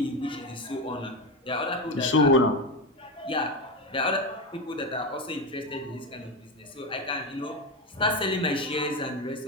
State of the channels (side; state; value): both; normal; correlation 0.15